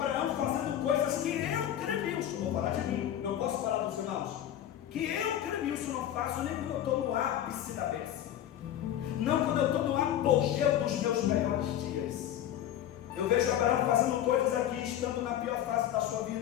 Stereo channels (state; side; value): quieter; right; 11.2 dB